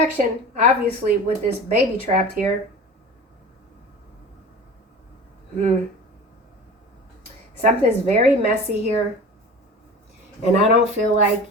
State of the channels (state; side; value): normal; both; correlation 0.36